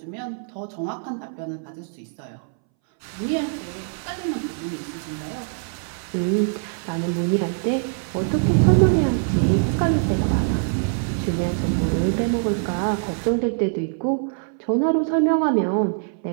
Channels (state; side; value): silent; left; 62 dB below the other